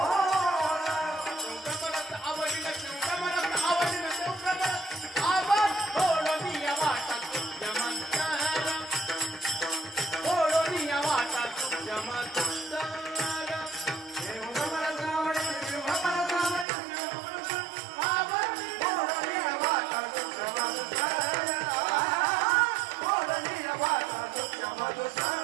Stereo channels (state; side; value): drops out; left; at 16.7 s